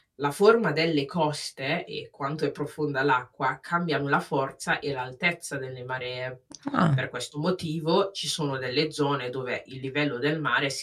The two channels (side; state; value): both; identical; correlation 1.00